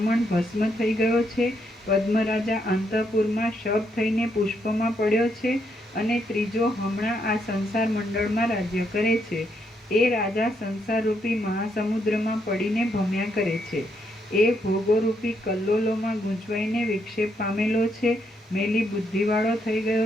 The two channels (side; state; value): both; normal; correlation 0.76